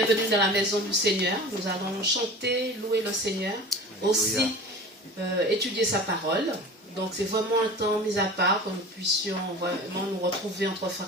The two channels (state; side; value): normal; both; correlation 0.37